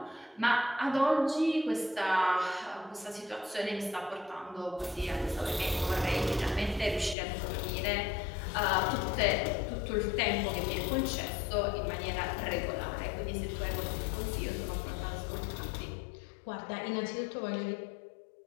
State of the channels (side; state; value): right; drops out; at 7.2 s